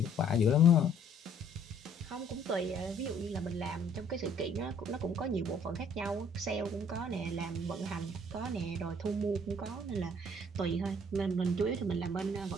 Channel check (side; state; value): both; normal; correlation 0.60